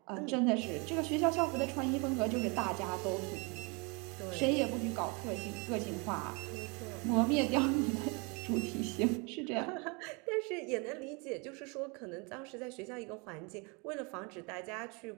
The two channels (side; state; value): left; quieter; 31.0 dB